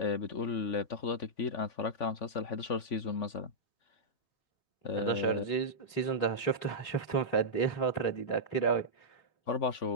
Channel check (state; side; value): late; right; 3.5 ms